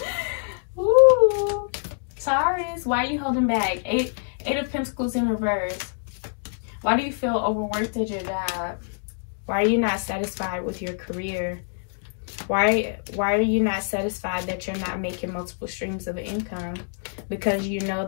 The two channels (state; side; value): silent; right; digital silence